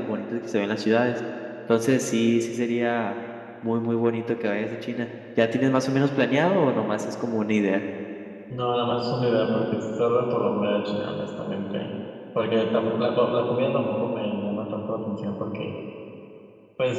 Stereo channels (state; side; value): identical; both; correlation 1.00